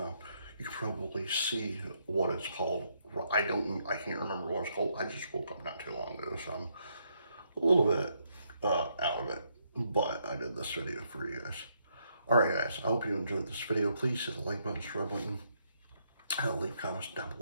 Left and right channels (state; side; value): inverted; both; correlation -0.75